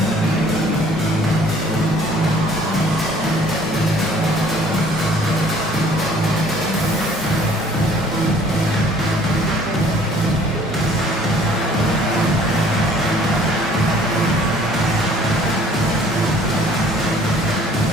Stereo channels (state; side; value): normal; both; correlation 0.55